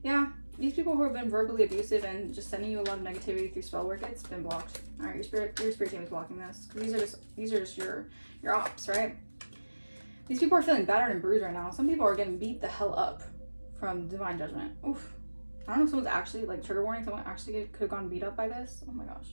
yeah, these people who have been verbally abusive and just sending you a lot of negativity through spell work, it's been blocked. All right, your spirit team is blocking this. These are just your ops, right? These people are feeling battered and bruised right now. Some people are getting beat the hell up from divine judgment. Oof. I don't know if someone's actually, like, trigger warning, someone actually could have gone beat up by this. Oh my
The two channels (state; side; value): inverted; both; correlation -1.00